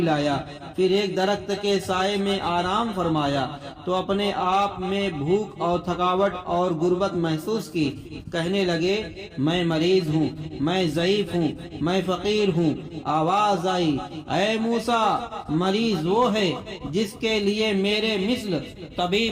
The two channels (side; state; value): both; identical; correlation 1.00